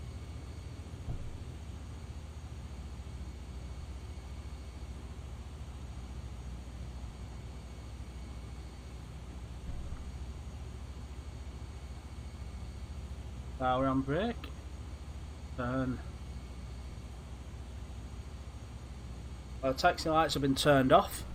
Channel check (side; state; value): both; identical; correlation 1.00